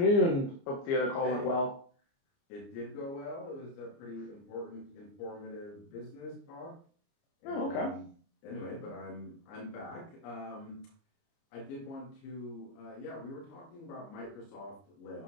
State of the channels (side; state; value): right; late; 29 ms